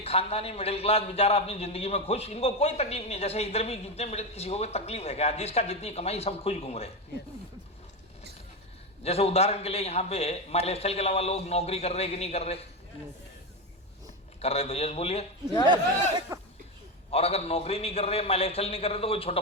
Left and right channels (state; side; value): normal; both; correlation 0.13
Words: खानदानी मिडिल क्लास बेचारा अपनी जिंदगी में खुश, इनको कोई तकलीफ नहीं। जैसे इधर भी जितने मिडिल, किसी को कोई तकलीफ है क्या? जिसका जितनी कमाई सब खुश घूम रहे। जैसे उदाहरण के लिए यहाँ पे माई लाइफस्टाइल के अलावा लोग नौकरी कर रहे कि नहीं कर रहे? कर रहे तो यस बोलिए। और अगर नौकरी नहीं कर रहे, माई लाइफस्टाइल नहीं कर रहे, तो कोई छोटा